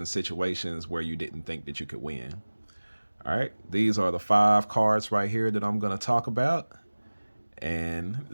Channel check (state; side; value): inverted; both; correlation -1.00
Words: situations where you didn't think that you could win. All right, these are the 5 cards right here that I'm going to talk about, and